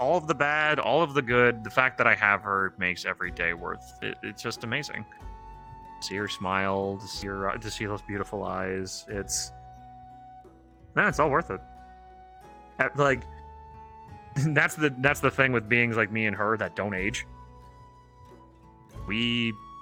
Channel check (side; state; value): both; identical; correlation 1.00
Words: the bad, all of the good, the fact that I have her makes every day worth it. It's just amazing. See her smile, to see those beautiful eyes. It's all worth it. Like, that's the thing with beings like me and her that don't age. We